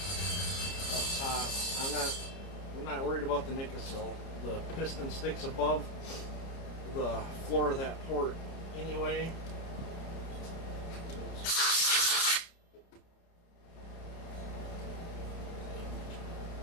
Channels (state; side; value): late; right; 30 ms